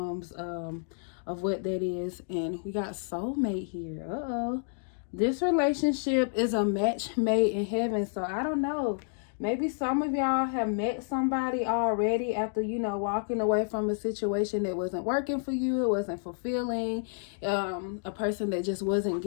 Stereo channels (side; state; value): right; silent; digital silence